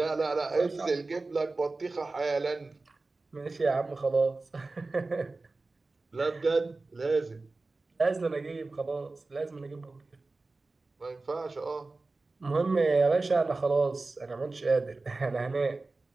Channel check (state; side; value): quieter; left; 3.5 dB